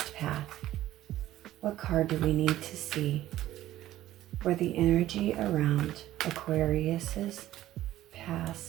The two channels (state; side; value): quieter; left; 14.1 dB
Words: path. What card do we need to see for the energy around Aquarius's